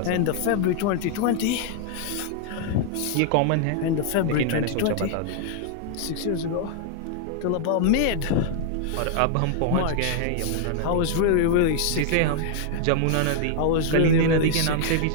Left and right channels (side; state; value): both; different; correlation 0.00